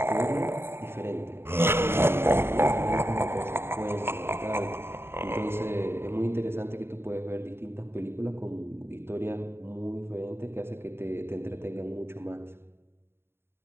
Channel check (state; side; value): late; left; 0.11 ms